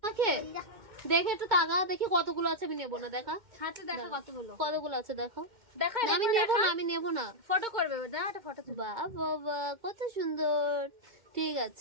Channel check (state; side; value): late; left; 2.1 ms